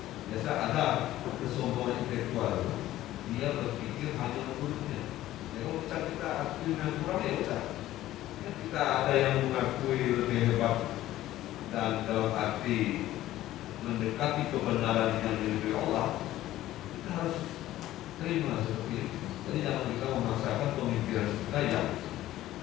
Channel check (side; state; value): right; quieter; 14.6 dB